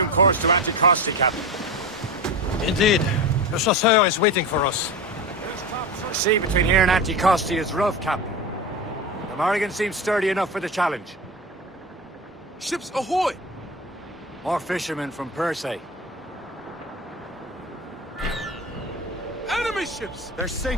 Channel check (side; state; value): both; normal; correlation 0.25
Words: course to Anticosti, Captain. Indeed. Le Chasseur is waiting for us. The sea between here and Anticosti is rough, Captain. The Morrigan seems sturdy enough for the challenge. Ships ahoy! More fishermen from Persay. Enemy ships! They're